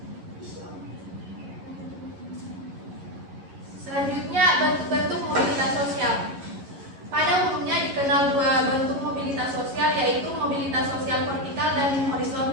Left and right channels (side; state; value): left; late; 11 ms